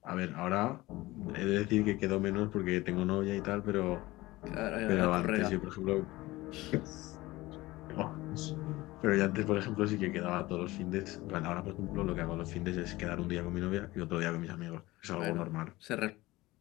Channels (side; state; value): right; quieter; 19.3 dB